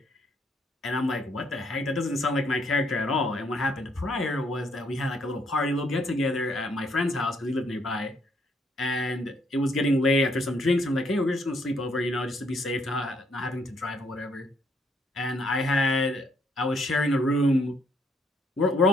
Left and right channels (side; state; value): both; normal; correlation 0.69